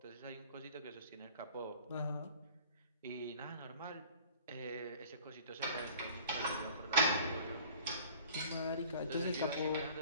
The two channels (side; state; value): both; inverted; correlation -0.47